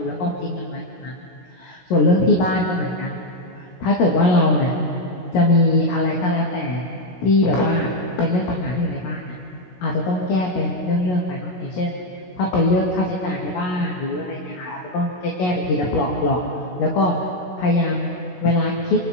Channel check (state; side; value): late; right; 17 ms